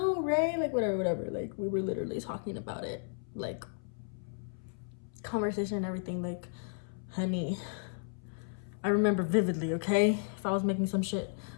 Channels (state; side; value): silent; right; 55 dB below the other